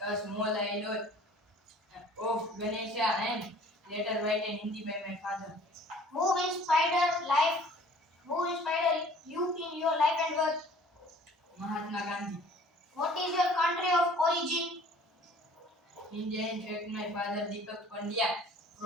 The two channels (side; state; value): both; normal; correlation 0.52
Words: a small island of Ganesha, and later written in Hindi by my father. Who inspired life? Who inspired you in your life and work? Mahatma Gandhi. What is your country of origin? India, in fact, my father Deepak Pandya